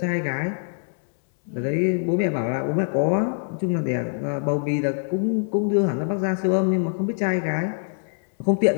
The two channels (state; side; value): silent; right; 63 dB below the other